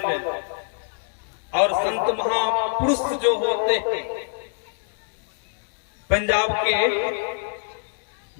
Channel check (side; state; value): right; silent; digital silence